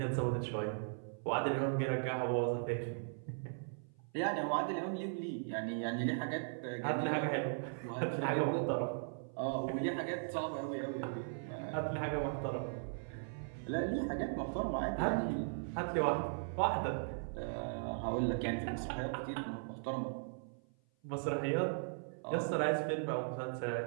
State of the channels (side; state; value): left; silent; 52 dB below the other